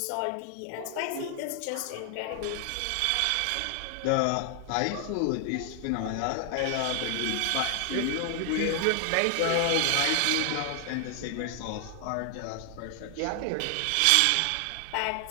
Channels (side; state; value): both; different; correlation 0.00